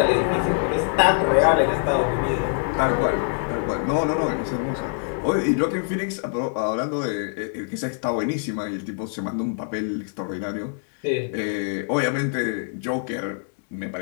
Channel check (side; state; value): right; silent; digital silence